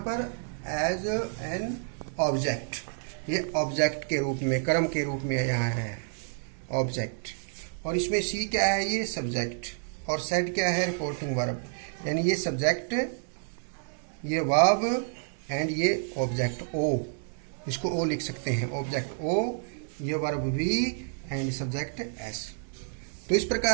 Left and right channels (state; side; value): silent; left; 58 dB below the other